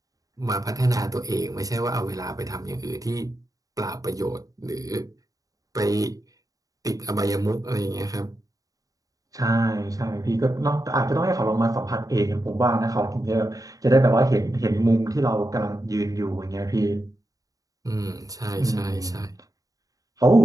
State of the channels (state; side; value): late; left; 0.17 ms